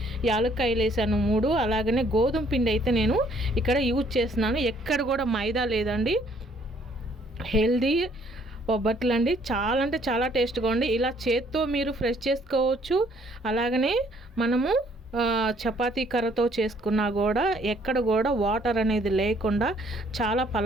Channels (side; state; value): both; normal; correlation 0.63